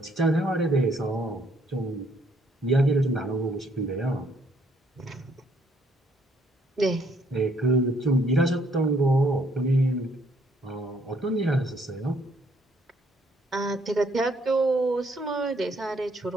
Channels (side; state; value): both; normal; correlation 0.67